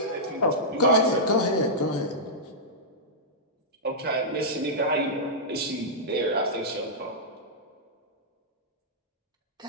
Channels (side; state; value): both; normal; correlation -0.11